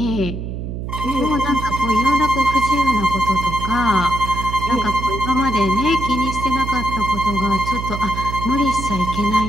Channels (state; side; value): noise; right; hum, 6 dB below the sound